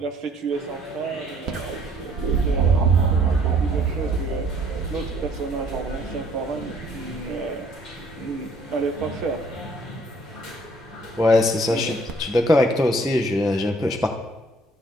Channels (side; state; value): both; normal; correlation 0.60